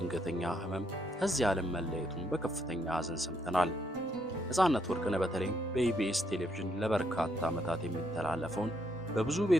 ህመም ከዚህ ዓለም መለየቱን በከፍተኛ ሐዘን ሰምተናል። ነጻነት ወርቅነህ በተለይ በኢቢኤስ ቴሌቪዥን ለበርካታ ዓመታት የሚተላለፈውን በብዙ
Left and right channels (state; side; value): normal; both; correlation 0.74